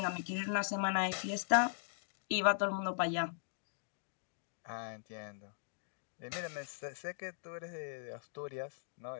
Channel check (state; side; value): silent; right; digital silence